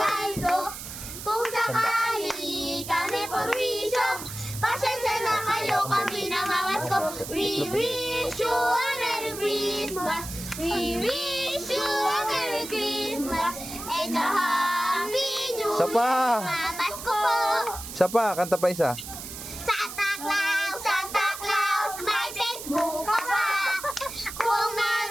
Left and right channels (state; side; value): noise; right; hiss, 10 dB below the sound